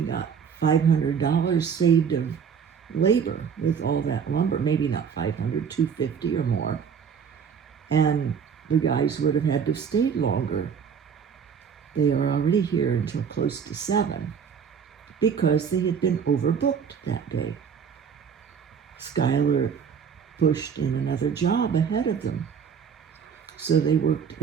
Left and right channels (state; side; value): quieter; left; 7.0 dB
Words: got $500 saved of labor with all that lumber. Maybe not 500, 250 or more. And the guys would have had to stay longer. They are already here until close to 7 because they had been overbooked that day. Skylar pushed in another job ahead of them. So they worked